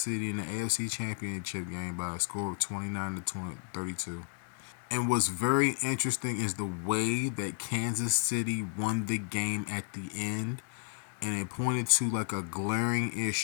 City in the AFC Championship game by a score of 29 to 32. And what's very interesting is the way that Kansas City won the game at the end, and it pointed to like a glaring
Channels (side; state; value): right; silent; digital silence